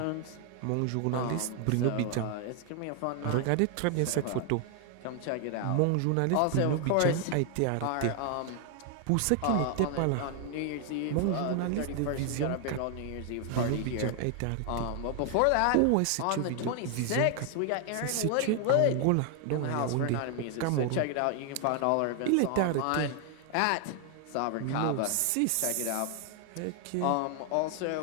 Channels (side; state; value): both; different; correlation 0.00